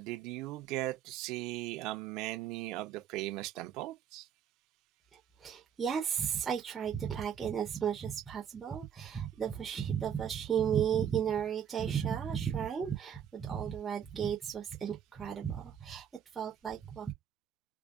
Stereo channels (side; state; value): left; quieter; 8.6 dB